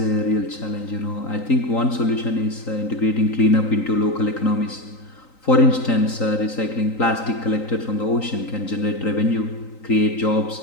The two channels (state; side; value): late; right; 3.9 ms